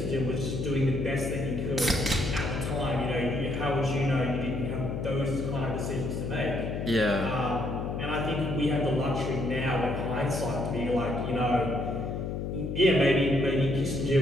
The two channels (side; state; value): left; noise; hum, 3 dB below the sound